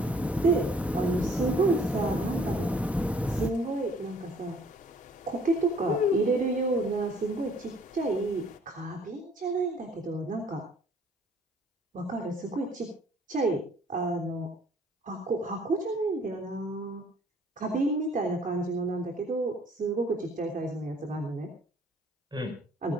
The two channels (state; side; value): normal; both; correlation 0.57